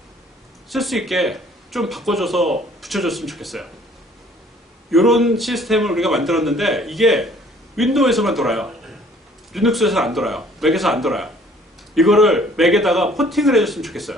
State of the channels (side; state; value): both; normal; correlation 0.57